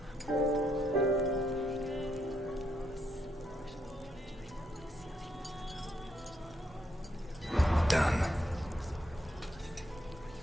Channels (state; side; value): normal; both; correlation 0.77